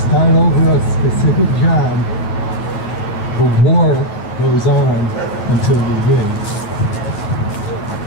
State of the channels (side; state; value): right; late; 9.6 ms